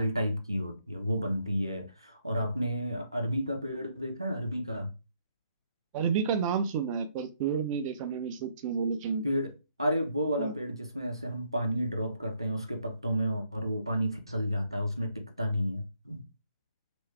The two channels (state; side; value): inverted; both; correlation -0.72